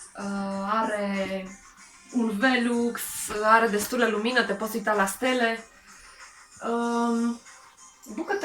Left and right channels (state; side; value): identical; both; correlation 1.00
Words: Are un Velux, are destulă lumină, te poți uita la stele.